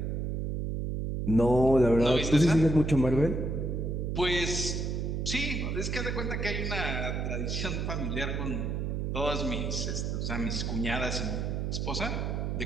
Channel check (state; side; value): noise; right; hum, 1 dB below the sound